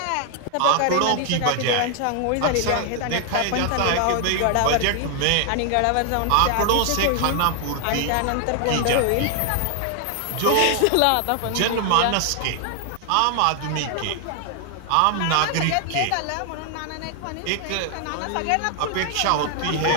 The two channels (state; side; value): different; both; correlation 0.00